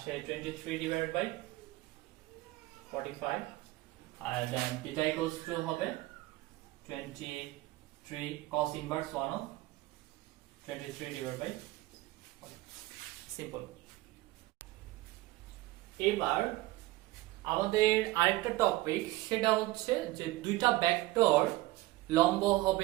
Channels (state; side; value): quieter; left; 18.6 dB